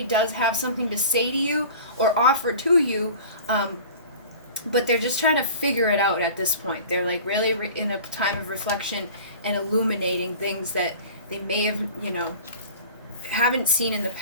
does have something to say to you or offer to you, but they're just trying to figure it out at this point. They're like really in a time of reflection and illuminating things that they may have, haven't seen in the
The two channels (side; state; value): both; inverted; correlation -0.40